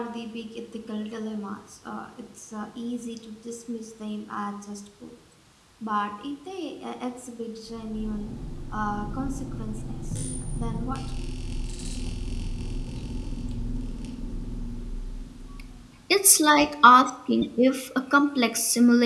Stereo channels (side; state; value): both; identical; correlation 1.00